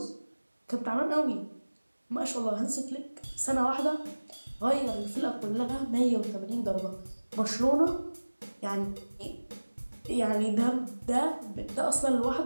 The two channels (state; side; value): inverted; both; correlation -1.00